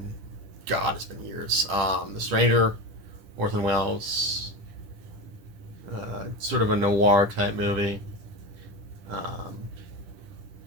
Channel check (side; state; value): left; late; 10 ms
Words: God, it's been years. The Stranger, Orson Welles. Sort of a noir type movie. And